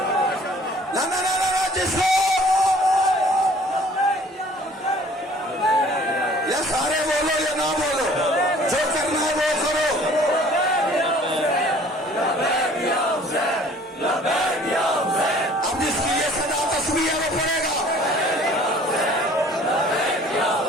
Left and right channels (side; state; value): both; normal; correlation 0.52